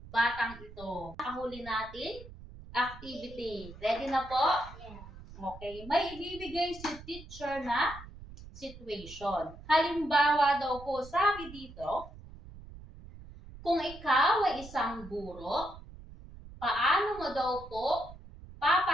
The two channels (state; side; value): noise; right; rumble, 16 dB below the sound